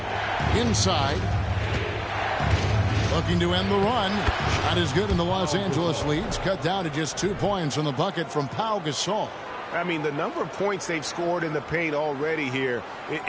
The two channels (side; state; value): both; identical; correlation 1.00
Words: Inside. Looking to end the run. Shot is good, and the Los Angeles leads cut down to just 2 points on the bucket from Pau Gasol. I mean, the number of points they've scored in the paint already here